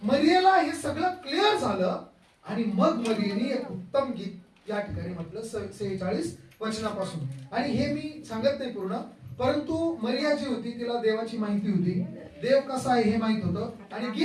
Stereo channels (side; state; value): both; identical; correlation 1.00